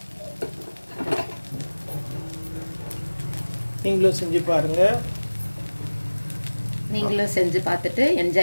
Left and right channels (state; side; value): inverted; both; correlation -1.00